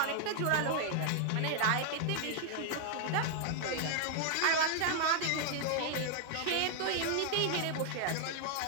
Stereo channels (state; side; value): different; both; correlation 0.00